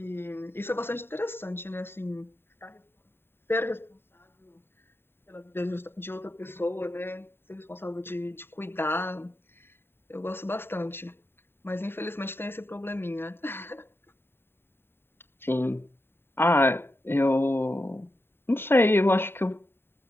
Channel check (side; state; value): right; late; 0.11 ms